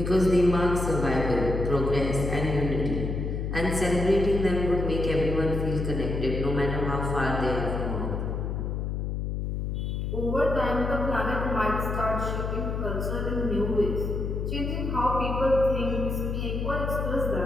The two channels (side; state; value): left; noise; hum, 2 dB below the sound